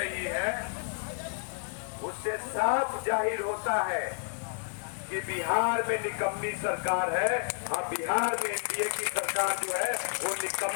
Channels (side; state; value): right; silent; 57 dB below the other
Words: है उससे साफ जाहिर होता है कि बिहार में निकम्मी सरकार है। हाँ, बिहार में एनडीए की सरकार जो है वो